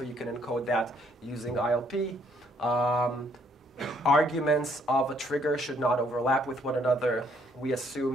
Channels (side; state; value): both; normal; correlation 0.67